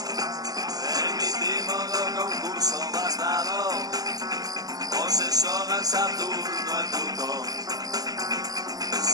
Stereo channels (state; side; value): late; left; 0.18 ms